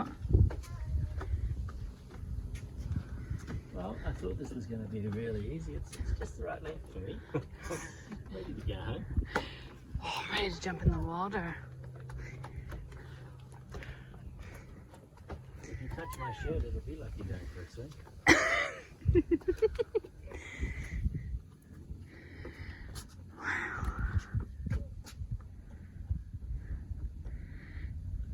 Well, I thought this was going to be really easy. It's just the right length for me. Ready to go home. Oh, I'm ready to jump in the water. If you touch my shirt, it'll be like you're going for a swim.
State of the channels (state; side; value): identical; both; correlation 1.00